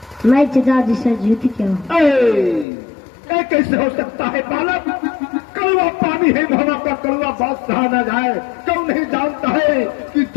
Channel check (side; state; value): right; drops out; at 2.7 s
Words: मैं चचा जी से जीत के हूँ। ये कैसे हो सकता है बालक? कड़वा पानी है मोहब्बत का, कड़वा बात कहा न जाए। क्यों नहीं जानता है कि